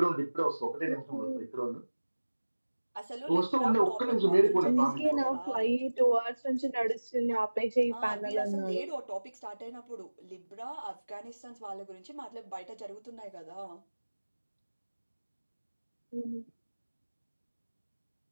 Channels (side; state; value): both; inverted; correlation -1.00